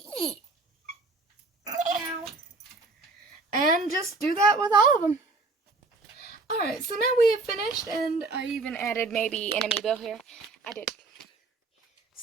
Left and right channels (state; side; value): quieter; left; 3.6 dB